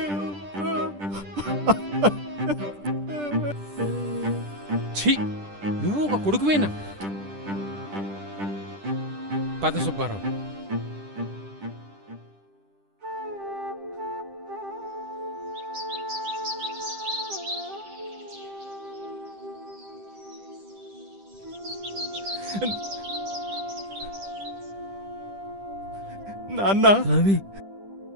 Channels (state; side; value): late; left; 10 ms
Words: ఛీ, నువ్వు ఒక కొడుకువేనా? పద సుబ్బారావు. నాన్న, రవి,